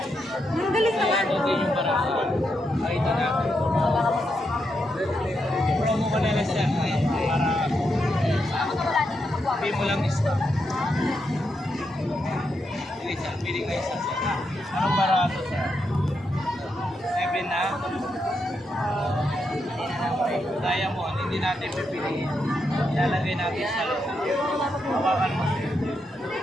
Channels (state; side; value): normal; both; correlation 0.82